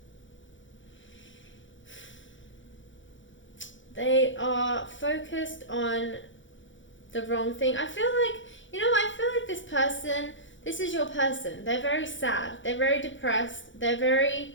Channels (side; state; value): right; late; 0.56 ms